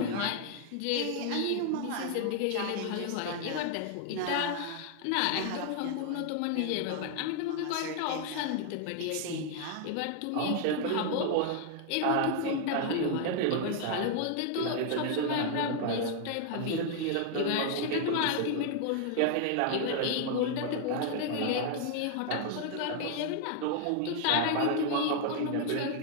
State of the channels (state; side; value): different; both; correlation 0.00